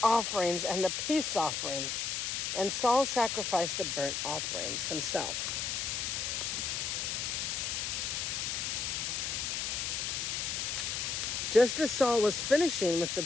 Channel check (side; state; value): left; noise; hiss, 1 dB below the sound